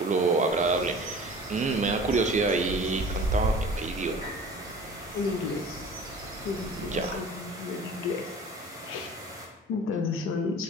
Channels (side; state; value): both; normal; correlation 0.43